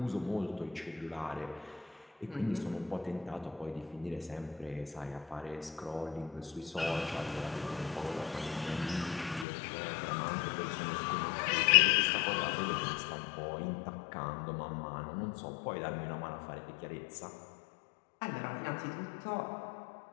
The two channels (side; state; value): right; drops out; at 9.5 s